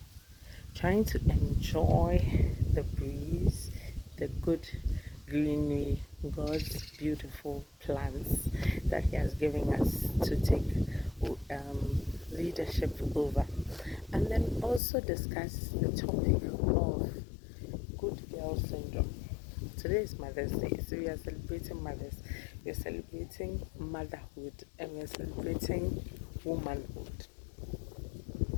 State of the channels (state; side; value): drops out; right; at 14.8 s